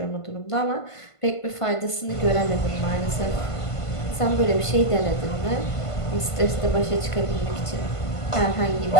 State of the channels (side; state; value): right; late; 1.5 ms